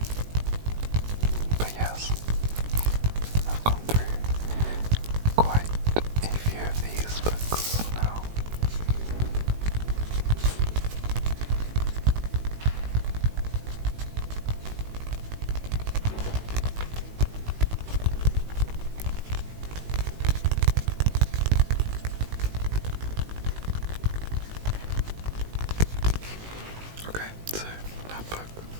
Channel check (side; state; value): left; late; 18 ms